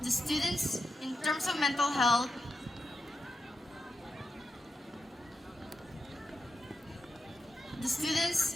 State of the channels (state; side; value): normal; both; correlation 0.88